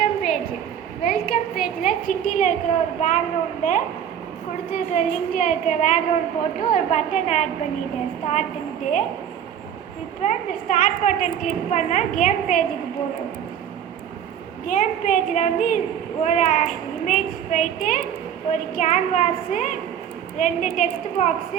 பேஜில் சிட்டியில் இருக்கிற ஒரு பேக்ரவுண்டை கொடுத்துருக்கிற லிங்கில் இருக்கிற பேக்ரவுண்ட் போட்டு ஒரு பட்டன் ஆட் பண்ணிட்டேன் ஸ்டார்ட்டுன்ட்டு. இப்போ இந்த ஸ்டார்ட் பட்டன் கிளிக் பண்ணால் கேம் பேஜுக்கு போகும். கேம் பேஜில் வந்து ஒரு இமேஜ் போயிட்டு ஒரு கேன்வாஸு, 2 டெக்ஸ்ட்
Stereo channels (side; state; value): left; quieter; 9.2 dB